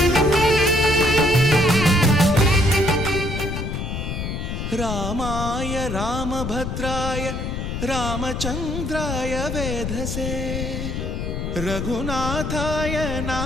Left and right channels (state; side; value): noise; left; rumble, 4 dB below the sound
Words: రామాయ రామభద్రాయ రామచంద్రాయ వేధసే రఘునాథాయ